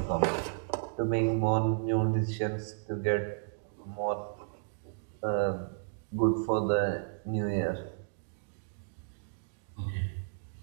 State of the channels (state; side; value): silent; left; digital silence